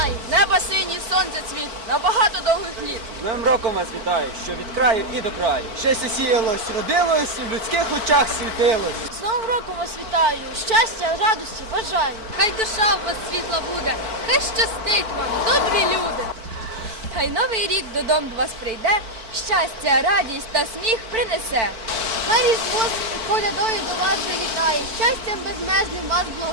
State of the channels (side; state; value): left; late; 4.5 ms